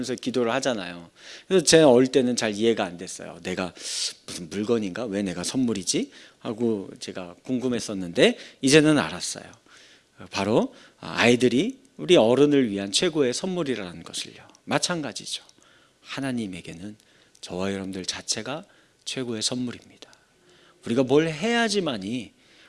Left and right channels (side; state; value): both; identical; correlation 1.00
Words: 기도를 하잖아요. 그래서 제가 어릴 때는 잘 이해가 안 됐어요. 내가 무슨 물건인가? 왜 내가 선물이지? 하고 제가 궁금했었는데 이제는 알았어요. 바로 아이들이 우리 어른을 위한 최고의 선물이라는 것을요. 마찬가지죠. 하나님에게는 저와 여러분들 자체가 최고의 선물입니다. 우리가 뭘 해야지만이,